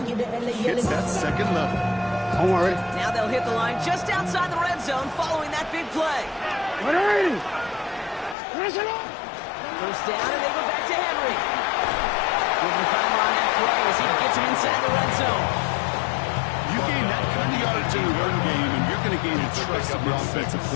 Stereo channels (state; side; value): drops out; right; at 8.3 s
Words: hits that second level. Don't worry. Now they'll hit the line just outside the red zone following that big play. First down, and they go back to Henry. Giving time on that play as he gets him inside the red zone. You gain that kind of yardage in the run game, and you're going to gain the trust of the offensive